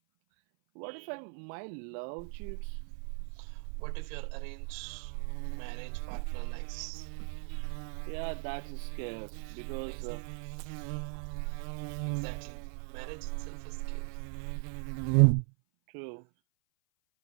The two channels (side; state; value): left; silent; 53 dB below the other